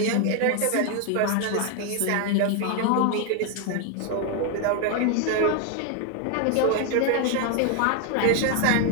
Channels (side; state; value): both; different; correlation 0.01